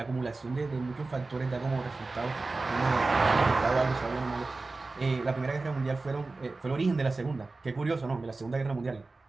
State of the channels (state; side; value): quieter; left; 3.5 dB